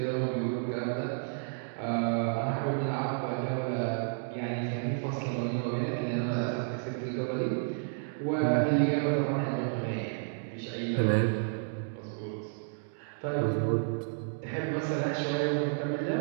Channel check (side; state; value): left; silent; digital silence